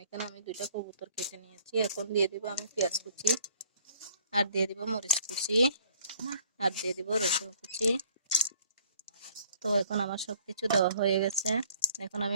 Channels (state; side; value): inverted; both; correlation -0.58